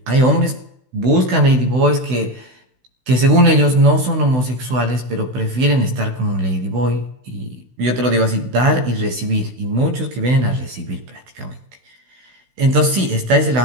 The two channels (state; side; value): late; left; 16 ms